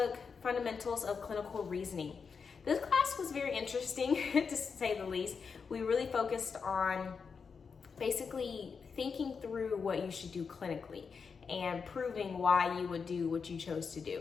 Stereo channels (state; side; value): quieter; right; 5.6 dB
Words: fundamentals of clinical reasoning. This class was very interesting to say the least. We really focused on basically thinking through what you should do clinically and proving why you would do what you chose to